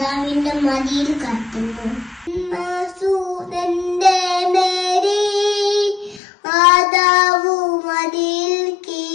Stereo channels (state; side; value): drops out; right; at 6.2 s